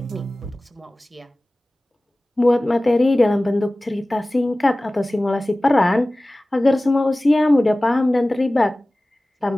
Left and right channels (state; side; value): normal; both; correlation 0.98